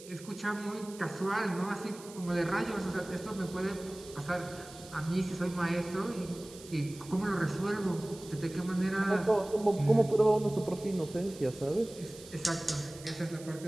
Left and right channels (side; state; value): right; noise; hiss, 18 dB below the sound